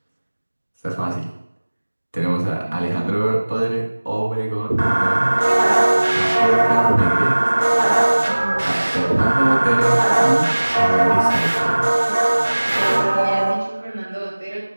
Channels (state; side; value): inverted; both; correlation -1.00